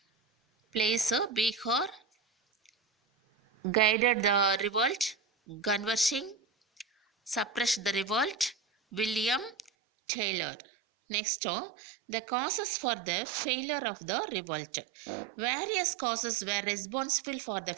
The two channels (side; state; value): left; drops out; at 9.7 s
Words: Place Bihar, guided the revolt, Ganwar Singh, suppressed the revolt? William Taylor. Next, the causes for the failure of the revolt. Various causes were responsible for the